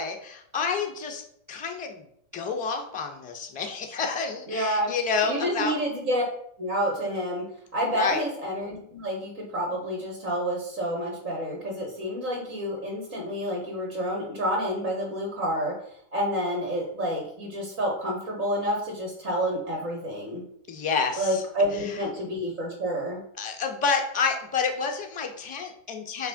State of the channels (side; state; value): left; late; 3.8 ms